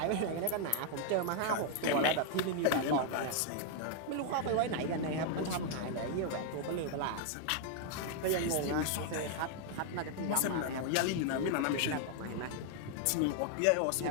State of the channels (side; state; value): both; different; correlation 0.00